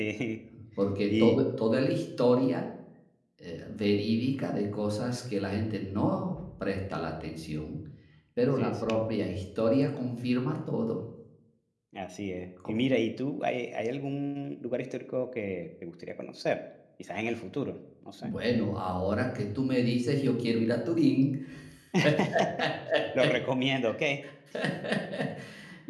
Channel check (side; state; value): both; identical; correlation 1.00